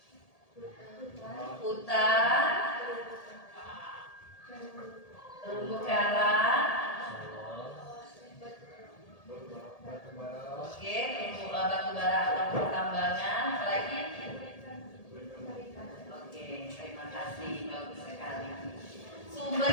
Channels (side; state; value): right; late; 1.8 ms